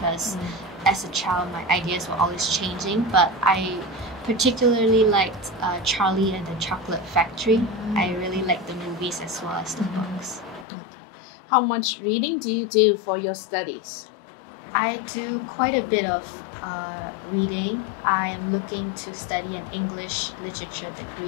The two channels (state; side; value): drops out; right; at 10.7 s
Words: as a child my ideas were always changing, but I particularly liked Charlie and the Chocolate Factory. I really liked the movies as well as the books. How much reading do you do for your studies? I do quite a bit of reading. I am looking to study an English literature